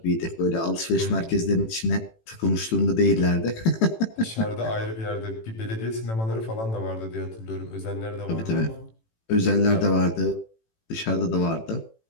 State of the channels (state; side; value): late; right; 18 ms